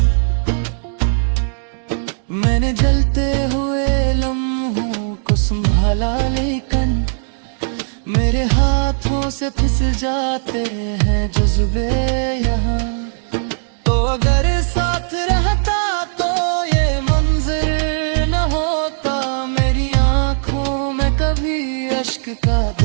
मैंने जलते हुए लम्हों को संभाला, लेकिन मेरे हाथों से फिसल जाते हैं जज्बे यहाँ। तो अगर साथ रहता तो ये मंजर न होता, मेरी आंखों में कभी अश्क का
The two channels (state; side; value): silent; left; digital silence